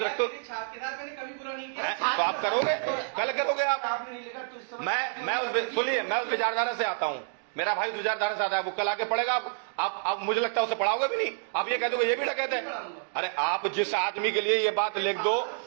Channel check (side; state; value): left; silent; digital silence